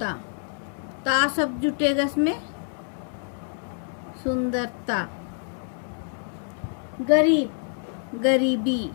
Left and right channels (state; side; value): silent; right; digital silence